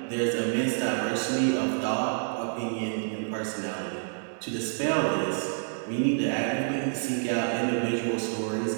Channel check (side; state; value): left; silent; digital silence